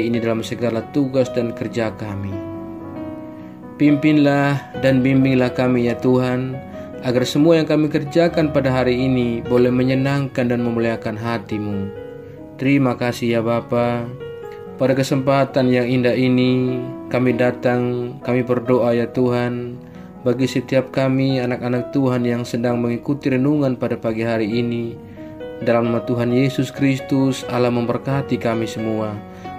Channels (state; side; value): identical; both; correlation 1.00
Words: ini dalam segala tugas dan kerja kami. Pimpinlah dan bimbinglah kami ya Tuhan, agar semua yang kami kerjakan pada hari ini boleh menyenangkan dan memuliakan hati-Mu. Terima kasih ya Bapa. Pada kesempatan yang indah ini, kami datang, kami berdoa ya Tuhan, bagi setiap kami anak-anak Tuhan yang sedang mengikuti renungan pada pagi hari ini. Dalam nama Tuhan Yesus Kristus, Allah memberkati kami semua.